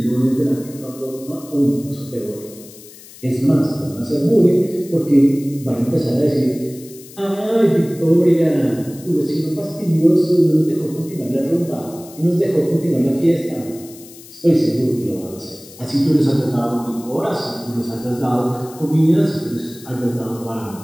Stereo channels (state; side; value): noise; left; hiss, 20 dB below the sound